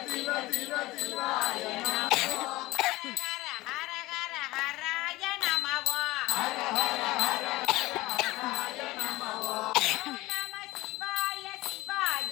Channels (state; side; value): quieter; right; 19.4 dB